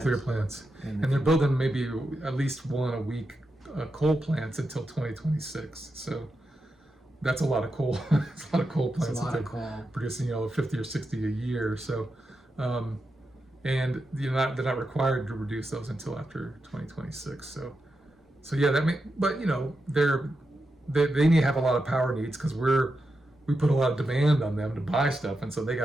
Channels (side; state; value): both; normal; correlation 0.88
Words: plants. And they're building maybe at least one a week coal plants until 2026. So that's a lot of coal. It's a lot of coal plants. It's a lot of coal. Producing 50 or 60 a year. So and they're not required to reduce those until after 2026. So yeah, but they need to have a lot of power needs, because we put a lot of demand on them to buy stuff, and so they